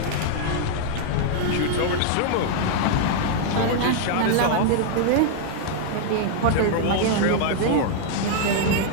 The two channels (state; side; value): different; both; correlation 0.00